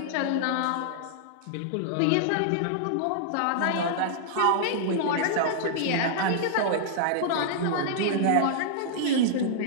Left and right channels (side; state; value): both; different; correlation -0.01